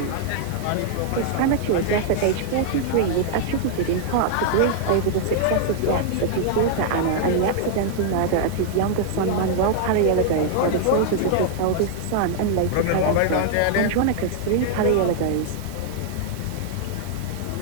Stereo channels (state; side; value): different; both; correlation -0.01